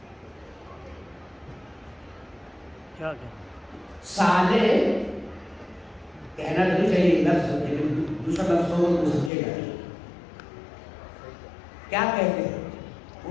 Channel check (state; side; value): drops out; right; at 9.3 s